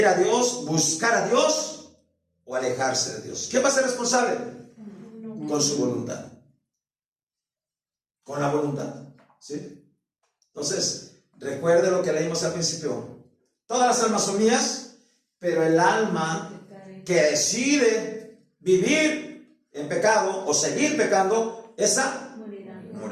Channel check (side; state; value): both; identical; correlation 1.00